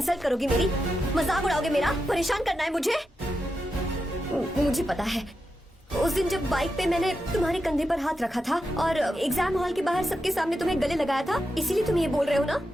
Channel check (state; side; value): normal; both; correlation 0.88